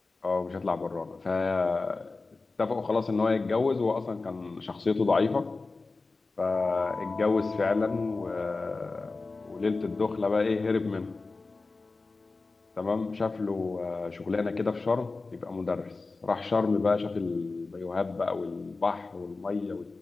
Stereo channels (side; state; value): right; quieter; 3.7 dB